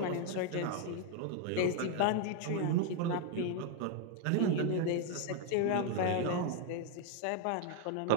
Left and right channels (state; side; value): different; both; correlation 0.00